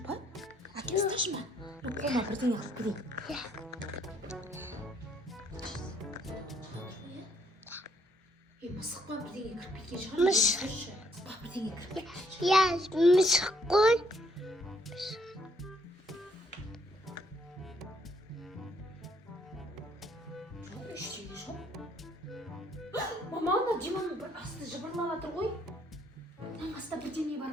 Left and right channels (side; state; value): both; normal; correlation 0.69